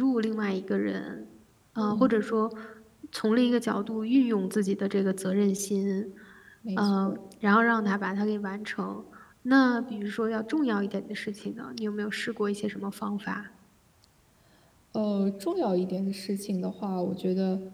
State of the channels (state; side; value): identical; both; correlation 1.00